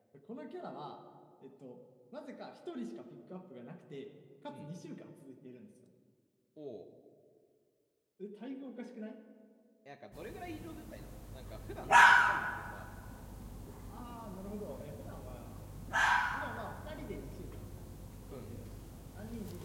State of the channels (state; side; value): identical; both; correlation 1.00